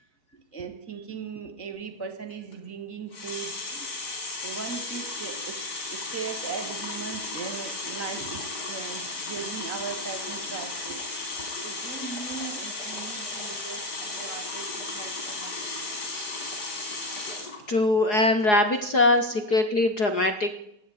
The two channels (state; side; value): late; right; 4.8 ms